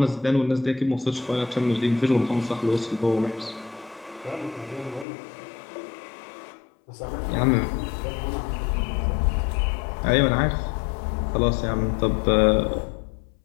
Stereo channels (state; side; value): drops out; right; at 5.1 s